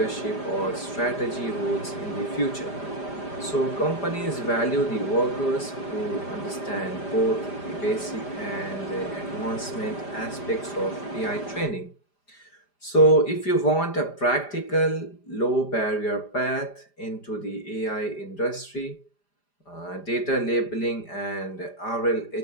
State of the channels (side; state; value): right; late; 5.0 ms